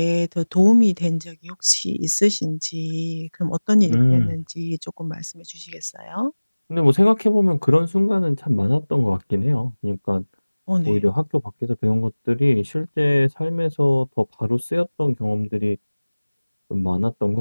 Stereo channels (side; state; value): both; inverted; correlation -1.00